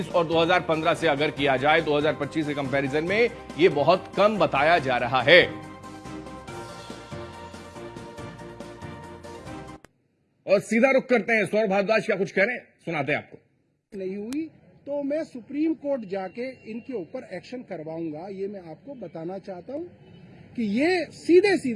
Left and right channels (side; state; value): both; identical; correlation 1.00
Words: और 2015 से अगर किया जाए, 2025 के कंपैरिजन में ये बहुत कम बताया जा रहा है। और सीधा रुख करते हैं, सौरभ भारद्वाज क्या कुछ कह रहे हैं, सुनाते हैं आपको। नहीं हुई तो मैं सुप्रीम कोर्ट जाके इनके ऊपर एक्शन करवाऊंगा। ये मैं आपको बताना चाहता हूं कि ये सीधे